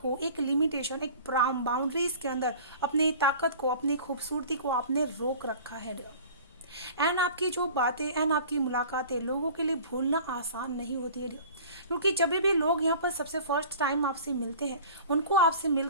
को एक लिमिटेशन, एक बाउंड्रीज के अंदर अपनी ताकत को, अपनी खूबसूरती को आपने रोक रखा है। एंड आपकी जो बातें एंड आपकी मुलाकातें लोगों के लिए भूलना आसान नहीं होती है, क्योंकि जब भी लोग यहाँ पर सबसे फर्स्ट टाइम आपसे मिलते हैं, उनको आपसे मिल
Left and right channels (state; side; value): inverted; both; correlation -0.43